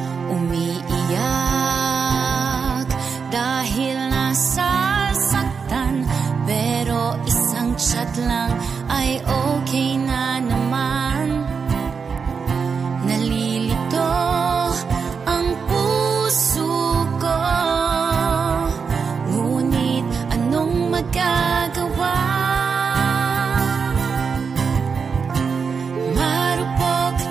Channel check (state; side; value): quieter; left; 5.7 dB